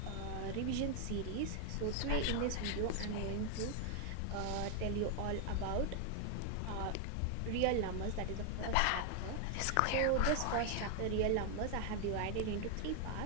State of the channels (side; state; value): both; different; correlation 0.00